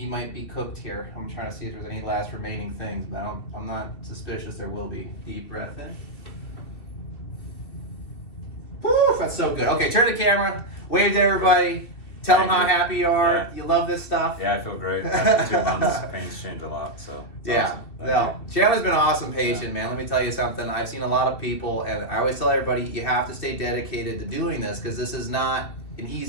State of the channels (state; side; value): late; right; 2.7 ms